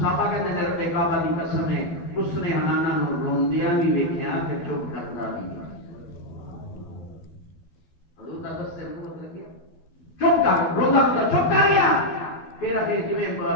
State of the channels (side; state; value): right; late; 12 ms